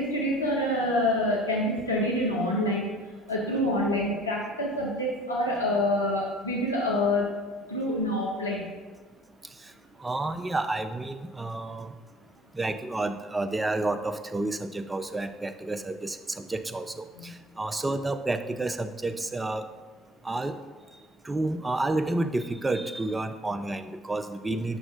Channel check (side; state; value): both; normal; correlation 0.50